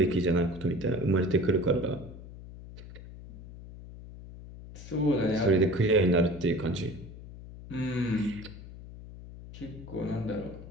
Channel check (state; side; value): noise; left; hum, 15 dB below the sound